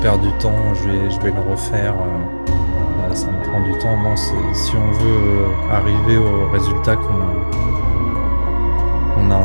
du temps, je vais le refaire, ça me prend du temps. Non, si on veut arriver au résultat qu'on a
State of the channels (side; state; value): both; inverted; correlation -1.00